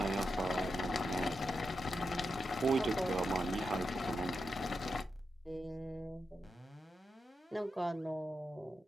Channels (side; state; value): both; normal; correlation 0.87